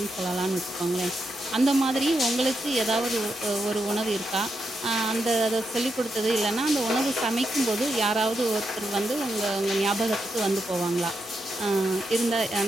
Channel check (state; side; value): normal; both; correlation 0.84